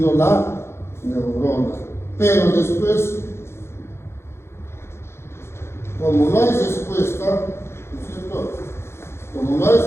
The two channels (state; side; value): late; right; 0.12 ms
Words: la neurona. Pero después, como no hay respuesta, ¿no es cierto?, como no hay